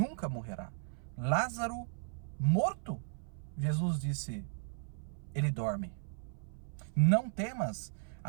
morrerá. Lázaro, morto, Jesus disse, ele dorme. Não temas,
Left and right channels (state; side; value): silent; left; 54 dB below the other